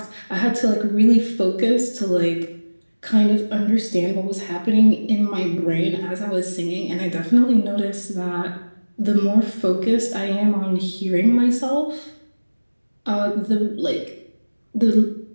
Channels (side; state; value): both; inverted; correlation -1.00